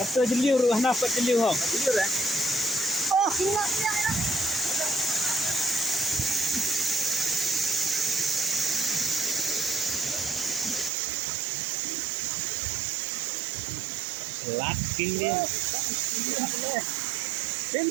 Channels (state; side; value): drops out; left; at 10.9 s